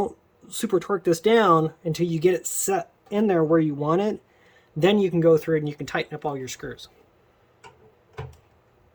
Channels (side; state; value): both; identical; correlation 1.00